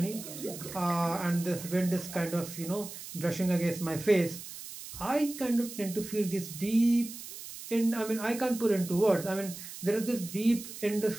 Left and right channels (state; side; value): noise; right; hiss, 12 dB below the sound